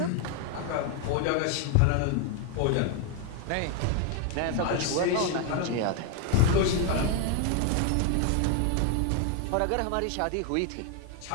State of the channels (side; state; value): both; different; correlation 0.00